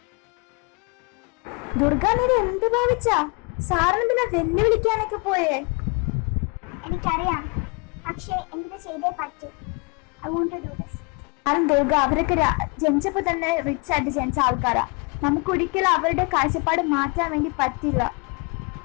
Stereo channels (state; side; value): quieter; right; 31.6 dB